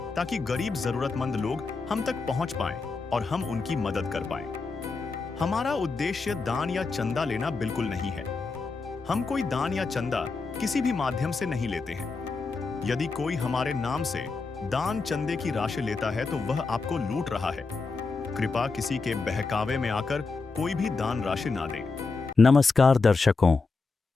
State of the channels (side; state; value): right; quieter; 4.2 dB